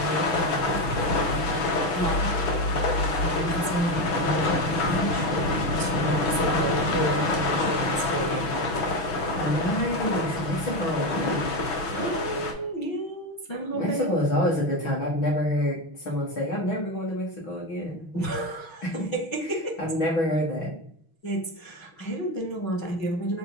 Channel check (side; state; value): right; late; 6.2 ms